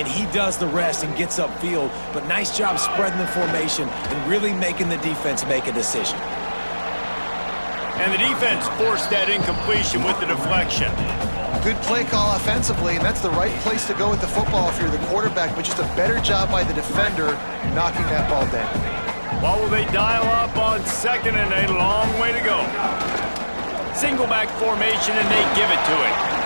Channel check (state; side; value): inverted; both; correlation -1.00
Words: he does the rest and gets upfield. But nice job spreading the formation and really making the defense make a decision. And the defense forced that incompletion with the deflection. Good play call offensively, and that's the right place to go with the football if you're the quarterback, but just a better job by the defender knocking that ball down. What will they dial up on 2nd and a long way to go? Single back formation, and they give it to it.